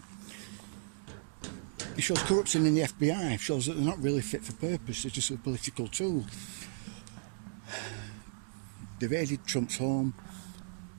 It shows corruption in the FBI, shows that they're not really fit for purpose, they're just a political tool. They raided Trump's home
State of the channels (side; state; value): left; silent; digital silence